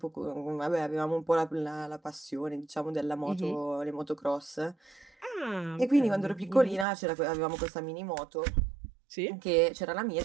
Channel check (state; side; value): drops out; left; at 6.9 s